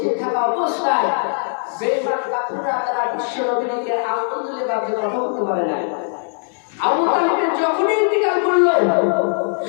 থাকা অবস্থায় বেঈমান কাফেররা তারা বিশ্বনবীকে আঙ্গুল তুলে বাঁধতে কথা বলতে পারে না। আবু তালিবের যখনই ইন্তিকাল করলো,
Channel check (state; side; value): silent; right; digital silence